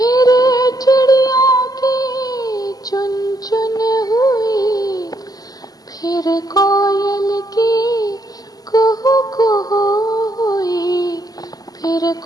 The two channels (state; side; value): late; right; 0.18 ms